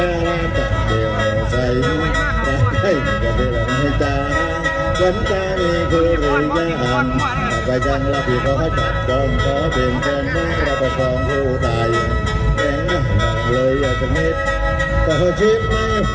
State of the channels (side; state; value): both; identical; correlation 1.00